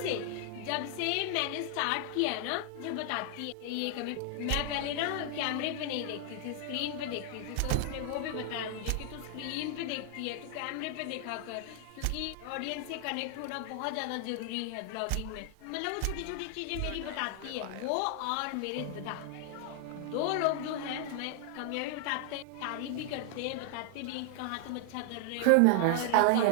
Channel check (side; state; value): both; different; correlation 0.00